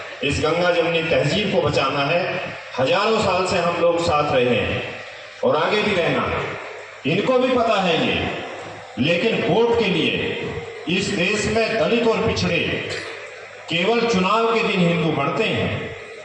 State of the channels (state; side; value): identical; both; correlation 1.00